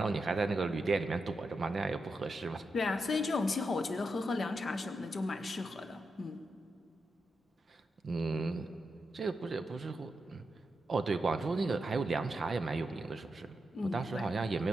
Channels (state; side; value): normal; both; correlation 0.87